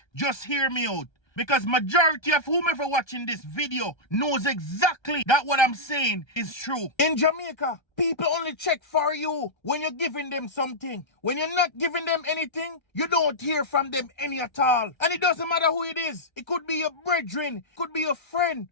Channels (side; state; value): right; late; 1.3 ms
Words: just hear me out. Because majority of whomever watching this video knows exactly that what I'm saying is true. In Jamaica, people only check for you when you're giving them something. When you're not giving them anything, you don't hear from them any at all. And it doesn't matter who it is. It could be your brethren, it could be your friend,